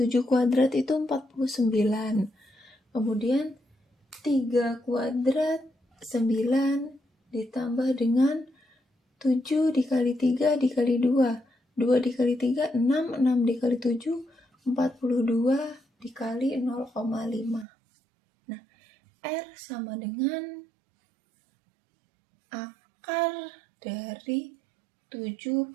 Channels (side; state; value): left; drops out; at 17.7 s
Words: kuadrat itu 49. Kemudian 3 kuadrat 9 ditambah dengan 7 dikali 3 dikali 2. 2 dikali 3, 6. 6 dikali 7, 42 dikali 0,5. Nah, R sama dengan akar dari